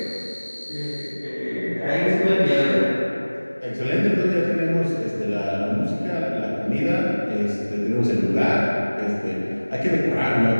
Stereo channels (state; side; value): inverted; both; correlation -1.00